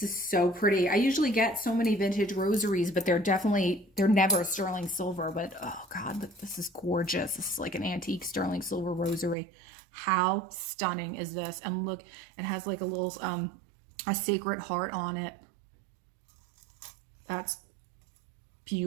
is so pretty. I usually get so many vintage rosaries, but they're never sterling silver. But oh God, this is gorgeous. This is like an antique sterling silver rosary. How stunning is this? And look, it has like a little, a sacred heart on it. That's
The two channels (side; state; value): left; drops out; at 9.3 s